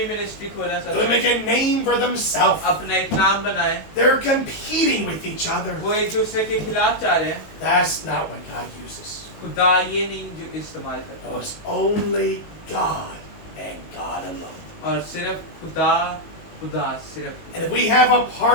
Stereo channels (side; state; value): right; late; 19 ms